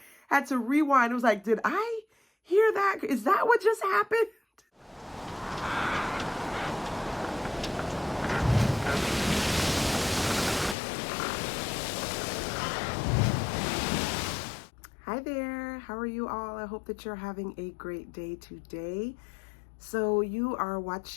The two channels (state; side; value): drops out; right; at 10.8 s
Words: had to rewind. It was like, did I hear that? Is that what just happened? Hi there. How are you all? I hope that you're having a great day today. So you are